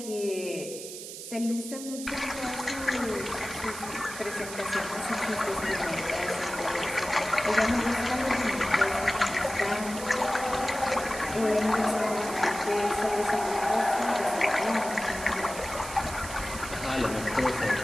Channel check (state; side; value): noise; right; hiss, 10 dB below the sound